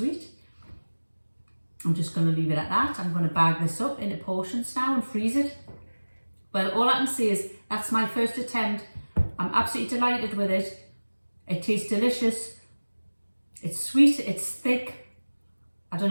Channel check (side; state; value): both; inverted; correlation -1.00